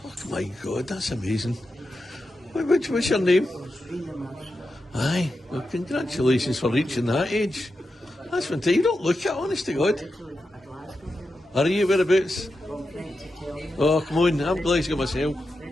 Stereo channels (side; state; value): both; normal; correlation 0.89